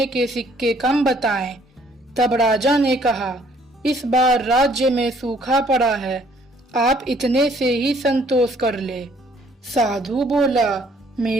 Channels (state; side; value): normal; both; correlation 0.61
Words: के सिक्के कम बताए। तब राजा ने कहा, इस बार राज्य में सूखा पड़ा है, आप इतने से ही संतोष कर ले। साधु बोला,